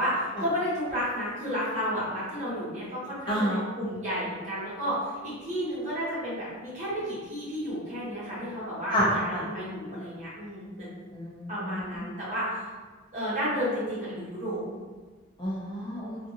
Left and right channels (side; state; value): both; normal; correlation 0.17